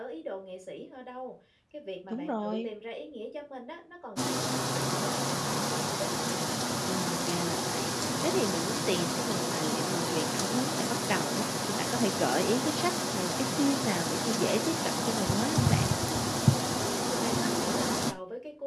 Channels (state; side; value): identical; both; correlation 1.00